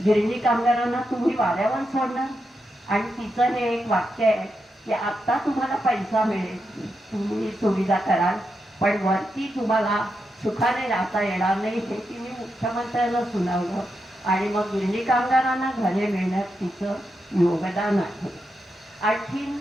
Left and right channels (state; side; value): normal; both; correlation 0.85